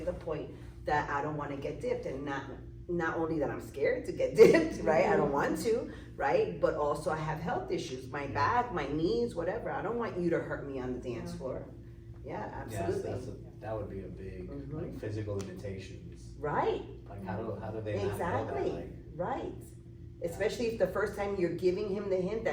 the point that I don't want to get dipped, and not only that I'm scared to get dipped, right? I don't want to, right? But also I have health issues, my back, my knees, whatever. I don't want you to hurt me on the dance floor. Yeah, absolutely. Yes, that would be a big like physical limitations. Right. Like how do they not know Exactly. that? Like, Right. Especially if the first time you're giving him the hint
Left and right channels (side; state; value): both; identical; correlation 1.00